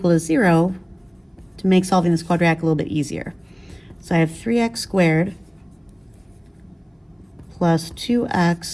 to 0 to make solving this quadratic a little bit easier. So I have 3x squared plus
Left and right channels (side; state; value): both; identical; correlation 1.00